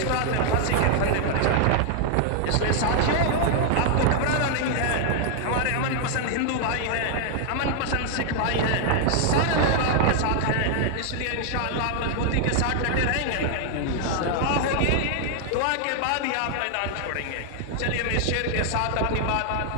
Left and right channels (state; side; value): different; both; correlation 0.00